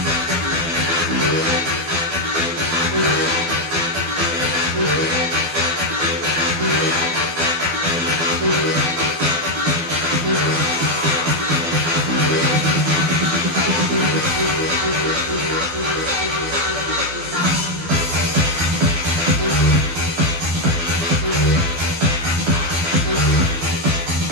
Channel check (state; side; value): late; left; 12 ms